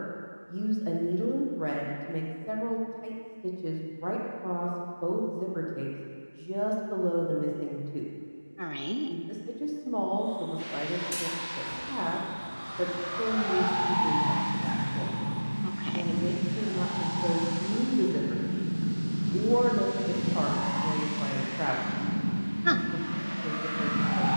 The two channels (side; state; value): both; inverted; correlation -1.00